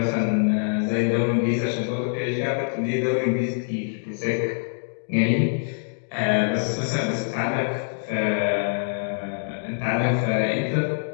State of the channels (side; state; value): right; silent; digital silence